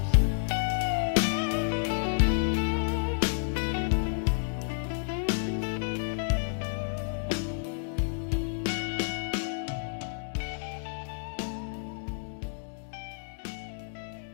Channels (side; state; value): right; silent; digital silence